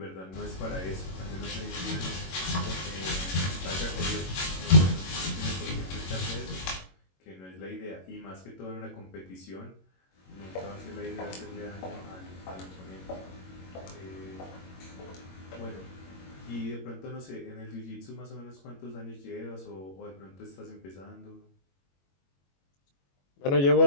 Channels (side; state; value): right; late; 22 ms